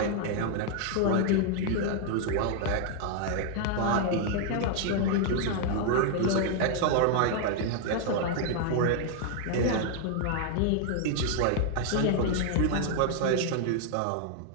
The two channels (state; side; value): different; both; correlation 0.00